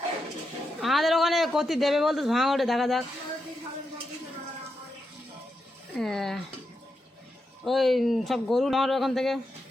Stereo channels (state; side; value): normal; both; correlation 0.85